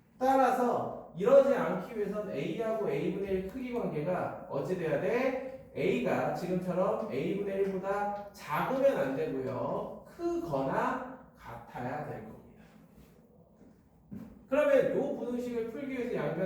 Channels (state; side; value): identical; both; correlation 1.00